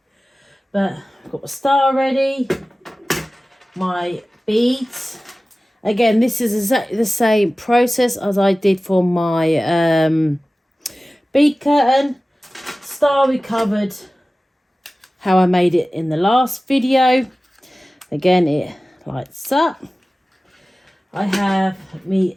But I've got the star ready, my beads. Again, this is exactly the same process as I did for my bead curtain. Star we covered how I made it in the last video. Again, it lights up. I have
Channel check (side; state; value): both; normal; correlation 0.96